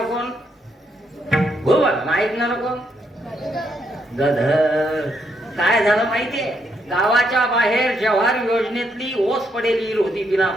कोण? घुबड. ऐकणार कोण? गध. काय झालं माहितीये? गावाच्या बाहेर जव्हार योजनेतली ओस पडेली होती बिना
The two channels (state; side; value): normal; both; correlation 0.76